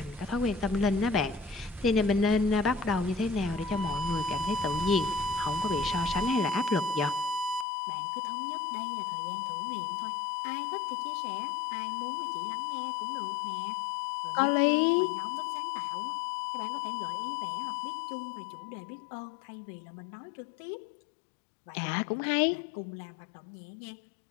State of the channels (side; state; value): right; drops out; at 7.7 s